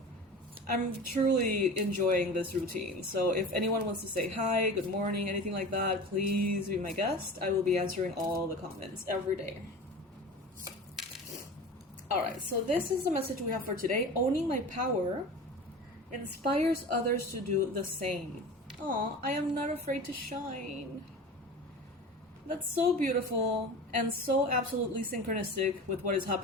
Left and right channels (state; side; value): normal; both; correlation 0.34